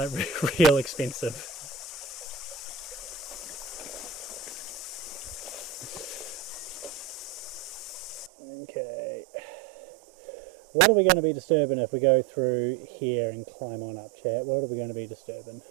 real expensive. Okay, what are we going to be disturbing if we go through here and climb on up, chat? What are we going to be disturbing?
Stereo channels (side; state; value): left; drops out; at 8.3 s